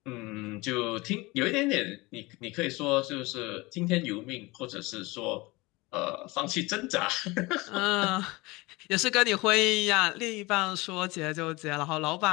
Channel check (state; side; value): quieter; right; 23.0 dB